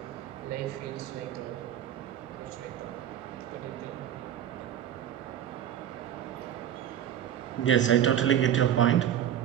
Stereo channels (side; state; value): left; quieter; 10.3 dB